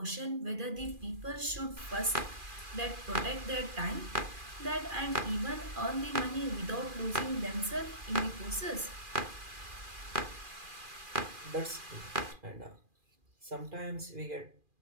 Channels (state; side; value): late; left; 2.4 ms